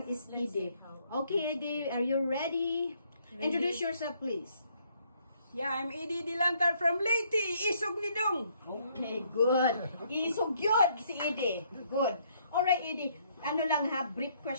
is Edie. Okay, Edie, are you ready? Introduce yourself, please. Yeah, I'm Edie Dilantar from Leyte, Isog Nidong. Okay, good. Isog yun si Edie. Good. Alright, Edie. Ano lang ha, brief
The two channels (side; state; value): both; inverted; correlation -0.68